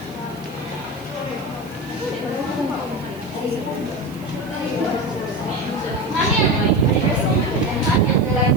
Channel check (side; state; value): right; noise; hiss, 24 dB below the sound